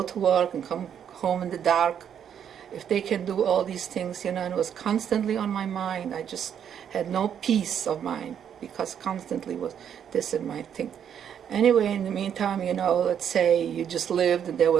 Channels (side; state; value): left; quieter; 8.7 dB